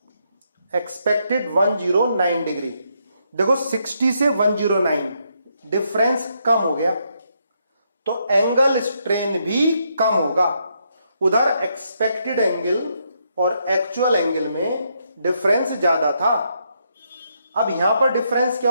एक्सपेक्टेड 109 डिग्री। देखो 60 से 109 डिफरेंस कम हो गया, तो एंगल स्ट्रेन भी कम होगा। उधर एक्सपेक्टेड एंगल और एक्चुअल एंगल में डिफरेंस ज्यादा था, अब यहां पर डिफरेंस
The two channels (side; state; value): both; inverted; correlation -0.77